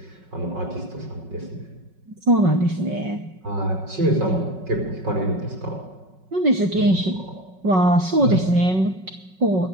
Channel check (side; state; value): left; late; 5.4 ms